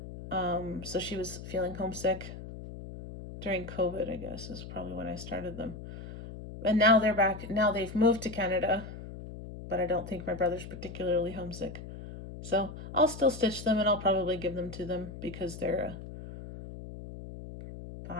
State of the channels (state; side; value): noise; left; hum, 11 dB below the sound